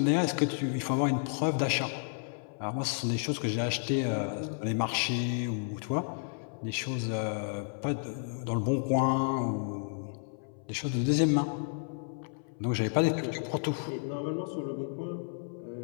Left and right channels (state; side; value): silent; right; 57 dB below the other